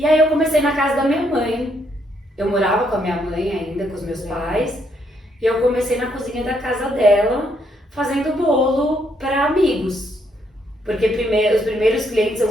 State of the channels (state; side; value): normal; both; correlation 0.74